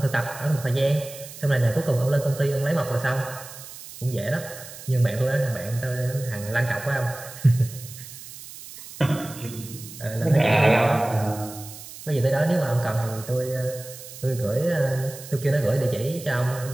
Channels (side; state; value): right; noise; hiss, 15 dB below the sound